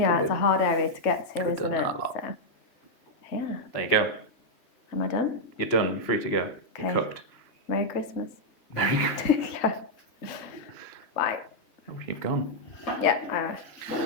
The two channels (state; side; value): late; right; 3.1 ms